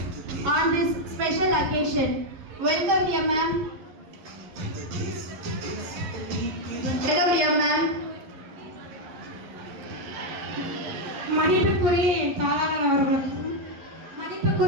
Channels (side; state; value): left; late; 11 ms